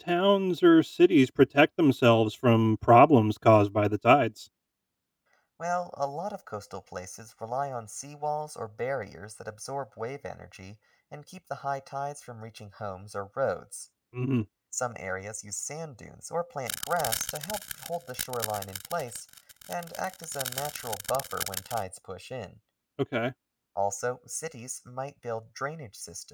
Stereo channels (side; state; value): both; identical; correlation 1.00